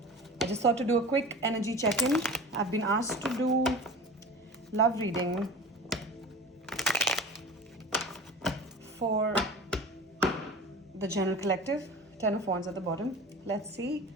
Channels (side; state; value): both; normal; correlation 0.36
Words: just thought to do a quick energy check-in. I've been asked to do love reading for the general collective. 10 of Wands at the bottom. Let's see